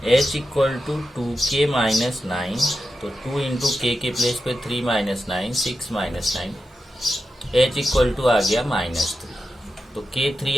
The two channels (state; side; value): normal; both; correlation 0.90